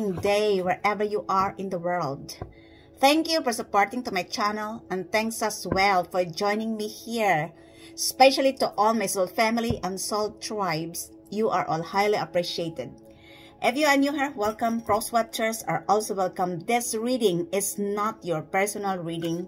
day wherever you are in the world. Thank you for supporting to my channel and thanks as well for joining me here. Especially to all my soul family and soul tribes. You are all highly appreciated. If you are new here, welcome. Cross watchers are also welcome. This reading is not your personal reading.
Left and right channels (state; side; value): identical; both; correlation 1.00